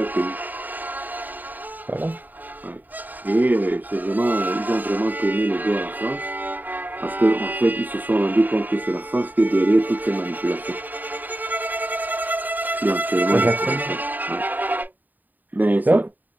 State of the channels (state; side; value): late; left; 0.086 ms